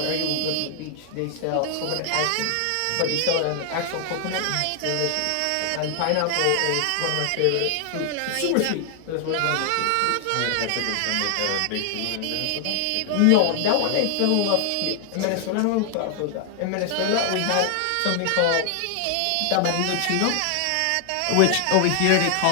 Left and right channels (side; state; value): both; different; correlation 0.00